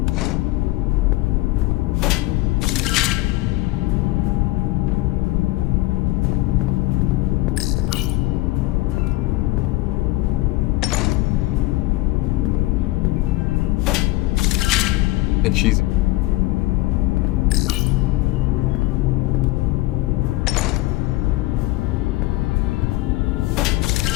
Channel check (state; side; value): quieter; right; 19.1 dB